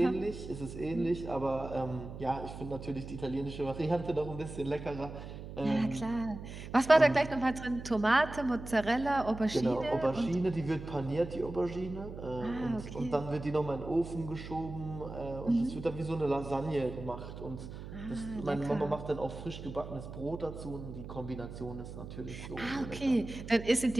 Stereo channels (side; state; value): right; noise; hum, 11 dB below the sound